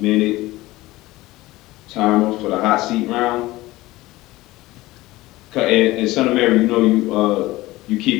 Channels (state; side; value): quieter; right; 18.6 dB